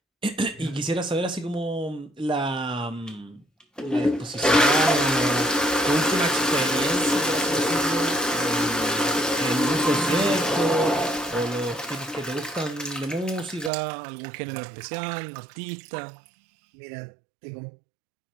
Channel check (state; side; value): drops out; left; at 13.7 s